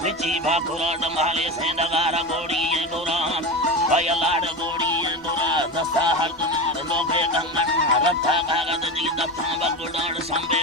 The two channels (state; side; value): normal; both; correlation 0.23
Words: विची भाकुराड माले से नगारा गोड़ी गोरा भय लाड गोड़ी गोरा दसा हरदनार लोगे गंगन रथा कागद दी दफा बगुडाड़ संबे